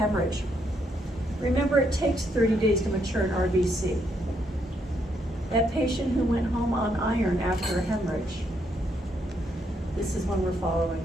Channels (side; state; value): both; normal; correlation 0.75